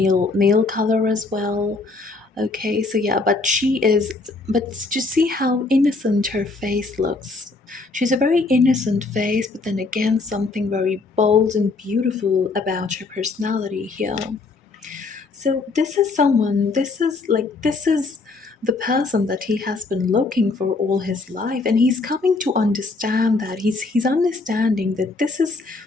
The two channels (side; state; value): right; quieter; 3.7 dB